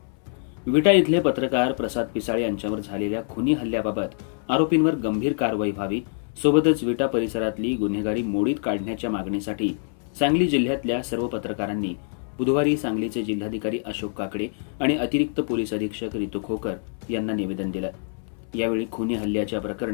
विटा इथले पत्रकार प्रसाद पिसाळे यांच्यावर झालेल्या खुनी हल्ल्याबाबत आरोपींवर गंभीर कारवाई व्हावी, सोबतच विटा परिसरातली गुन्हेगारी मोडीत काढण्याच्या मागणीसाठी सांगली जिल्ह्यातल्या सर्व पत्रकारांनी बुधवारी सांगलीचे जिल्हाधिकारी अशोक काकडे आणि अतिरिक्त पोलीस अधीक्षक रितू खोकर यांना निवेदन दिलं. यावेळी खुनी हल्ल्याच्या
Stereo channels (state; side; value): silent; right; 62 dB below the other